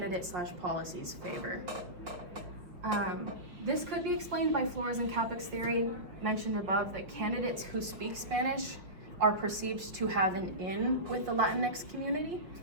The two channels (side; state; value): left; late; 5.6 ms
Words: favor. This could be explained by Flores and Capek's theory mentioned above, that candidates who speak Spanish are perceived to have an in with the Latinx community.